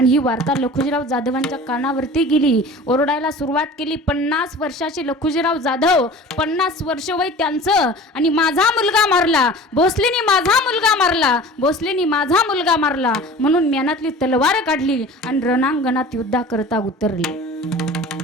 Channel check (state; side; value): normal; both; correlation 0.40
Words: ही वार्ता लखुजीराव जाधवांच्या कानावरती गेली. ओरडायला सुरुवात केली. 50 वर्षाचे लखुजीराव जाधव, 50 वर्ष वय त्यांचं, आणि माझा मुलगा मारला, भोसलेनी माझा मुलगा मारला, भोसलेनी माझा मुलगा मारला म्हणून म्यानातली तलवार काढली आणि रणांगणात युद्धाकरता उतरले.